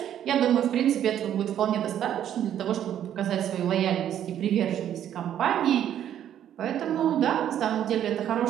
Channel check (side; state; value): left; quieter; 10.5 dB